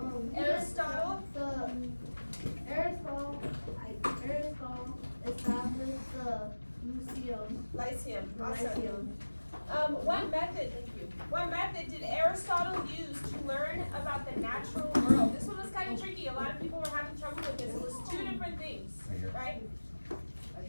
Aristotle? Aristotle established the Lyceum, awesome. Lyceum. What method did Aristotle use to learn about the natural world? This one was kind of tricky. A lot of people were having trouble with this. It was 2 different things, right?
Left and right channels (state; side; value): inverted; both; correlation -1.00